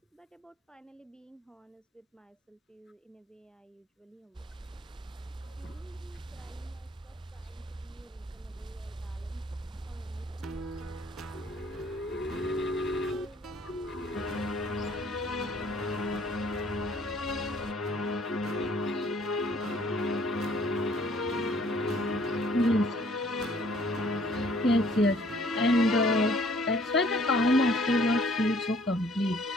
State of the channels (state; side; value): normal; both; correlation 0.59